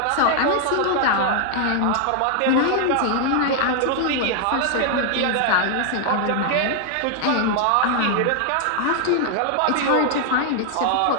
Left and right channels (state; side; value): different; both; correlation 0.00